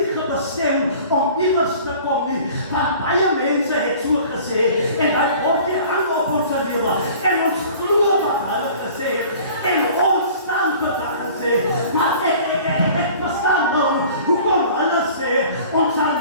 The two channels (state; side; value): inverted; both; correlation -0.47